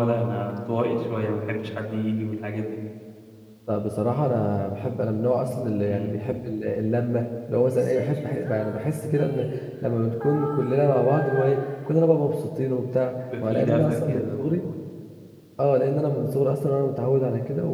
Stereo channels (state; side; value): identical; both; correlation 1.00